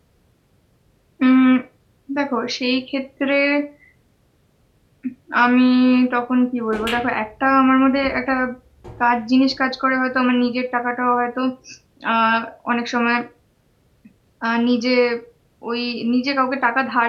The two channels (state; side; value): identical; both; correlation 1.00